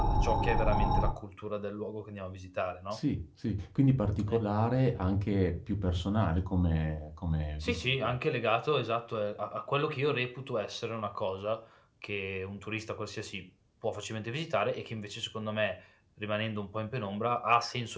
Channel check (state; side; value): identical; both; correlation 1.00